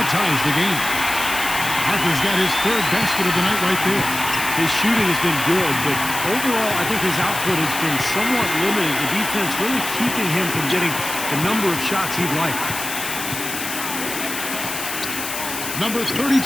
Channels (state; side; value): noise; left; hiss, 6 dB below the sound